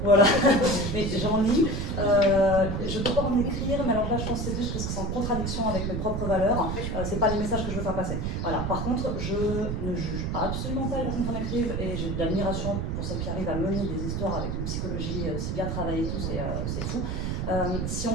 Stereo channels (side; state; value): right; noise; rumble, 2 dB below the sound